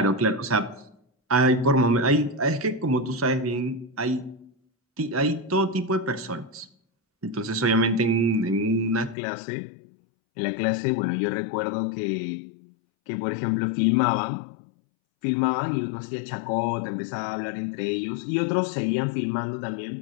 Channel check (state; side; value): drops out; right; at 9.2 s